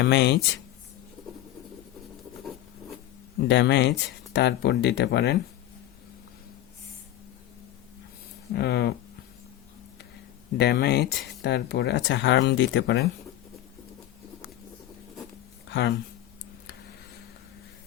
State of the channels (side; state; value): right; quieter; 13.5 dB